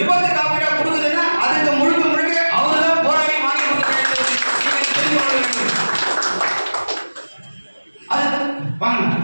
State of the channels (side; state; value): both; inverted; correlation -1.00